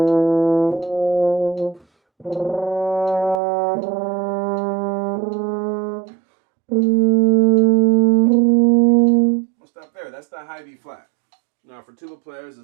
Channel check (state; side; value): drops out; left; at 3.4 s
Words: We'll stop there. That's the high B flat. Now for tuba players,